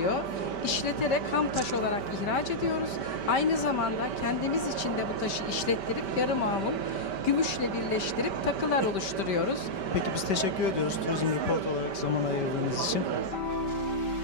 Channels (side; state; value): right; late; 5.2 ms